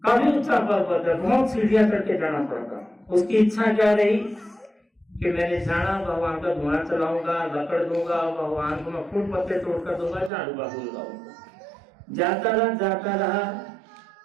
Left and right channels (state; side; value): drops out; left; at 10.3 s